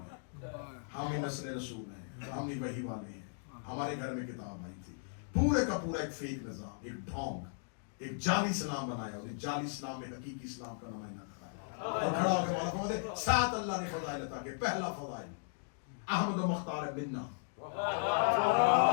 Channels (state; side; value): silent; right; digital silence